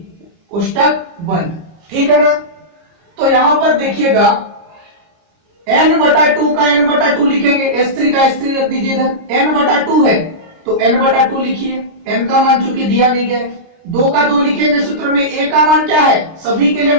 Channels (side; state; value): left; late; 29 ms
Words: कोष्टक बंद, ठीक है ना। तो यहां पर देखिएगा n/2 का n/2 लिखेंगे, s3 का s3 रख दीजिए इधर, n/2 है तो n/2 लिखिए, n का मान चूंकि दिया नहीं गया है, 2 का 2 लिखेंगे सूत्र में, a का मान क्या है, सभी के लिए